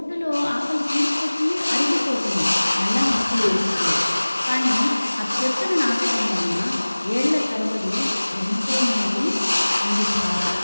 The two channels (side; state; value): both; inverted; correlation -1.00